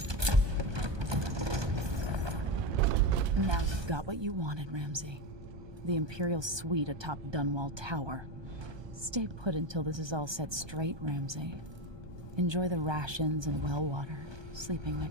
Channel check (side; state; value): left; late; 1.2 ms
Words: Now you've got what you wanted, Ramsay. The Imperial suite atop Dunwall Tower. Stay put until this is all set straight, Ramsay. Enjoy the rations and well water, sleeping